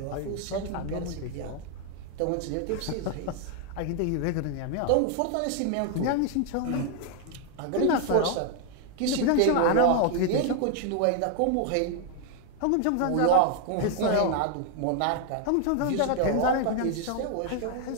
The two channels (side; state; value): both; different; correlation 0.00